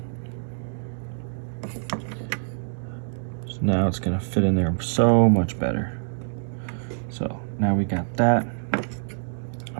So now it's gonna fit in there so much better. So now we got that.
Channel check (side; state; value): left; silent; digital silence